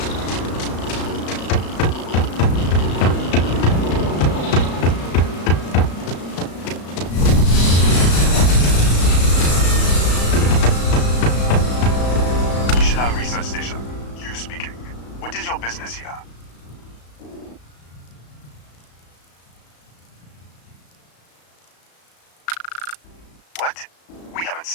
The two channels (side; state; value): right; late; 35 ms